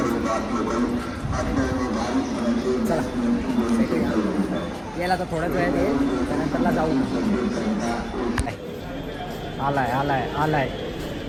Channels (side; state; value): both; identical; correlation 1.00